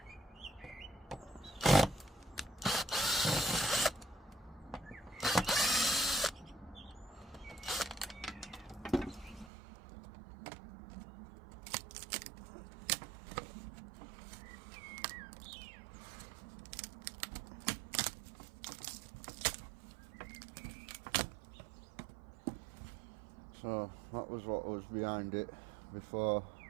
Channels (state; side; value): drops out; left; at 9.5 s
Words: So that was what was behind it before